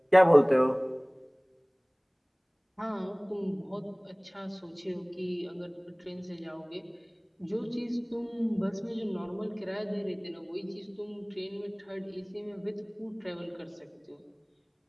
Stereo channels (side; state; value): both; identical; correlation 1.00